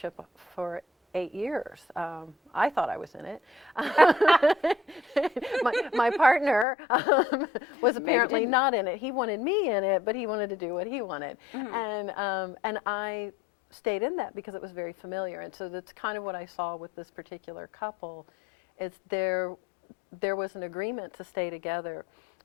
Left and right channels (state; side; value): drops out; right; at 6.7 s